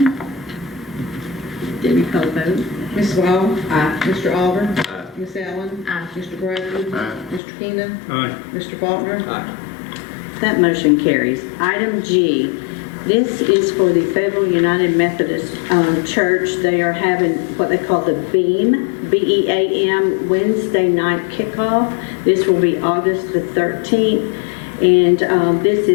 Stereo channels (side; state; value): right; drops out; at 7.4 s